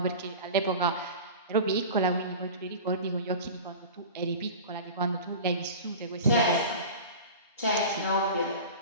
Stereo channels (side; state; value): both; inverted; correlation -0.33